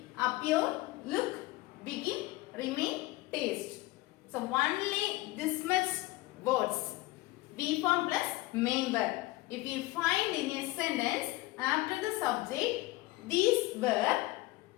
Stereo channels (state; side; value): quieter; right; 19.5 dB